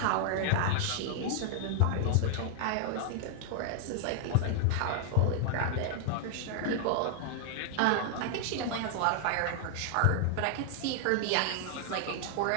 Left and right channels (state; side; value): different; both; correlation 0.00